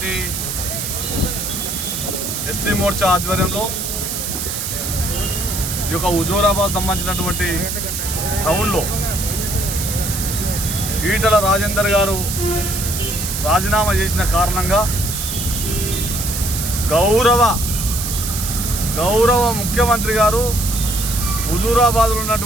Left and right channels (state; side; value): noise; right; hiss, 4 dB below the sound